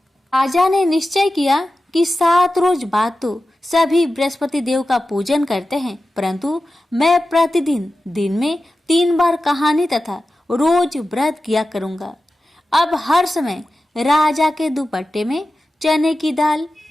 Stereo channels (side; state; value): both; normal; correlation 0.93